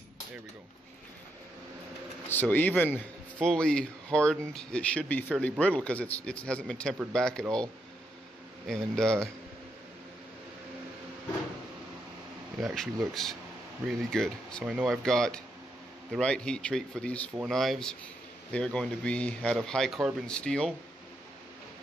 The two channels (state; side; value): normal; both; correlation 0.80